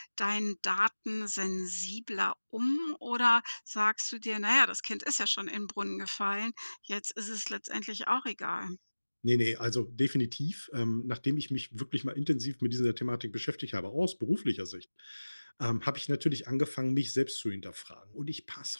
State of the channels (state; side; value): inverted; both; correlation -1.00